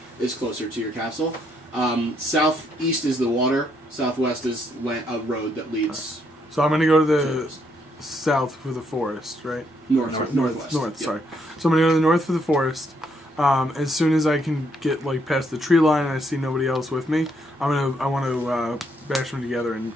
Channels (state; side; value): normal; both; correlation 0.73